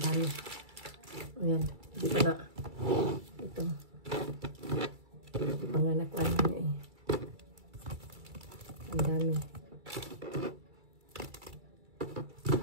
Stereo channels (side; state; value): left; late; 2.3 ms